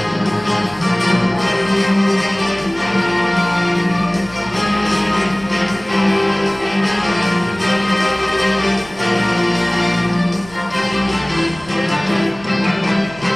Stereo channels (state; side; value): noise; right; rumble, 21 dB below the sound